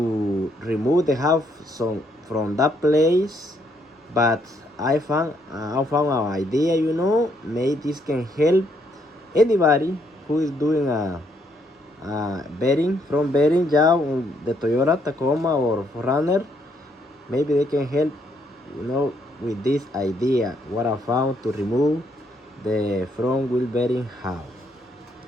remove the hub from that place, but I found an idea, maybe this can help anybody who is doing a bearing job on the Toyota Tacoma or 4runner. Maybe they can help, with this idea what I found to remove the front wheel bearing hub.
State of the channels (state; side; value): normal; both; correlation 0.72